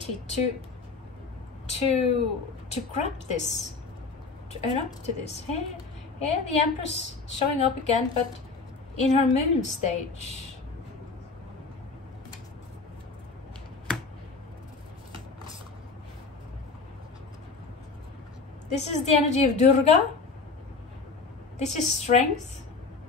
to grab this, to own up to this. Here the Empress showing up again, but in her moon stage. This is the energy of Durga. This is strength.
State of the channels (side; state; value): right; quieter; 4.3 dB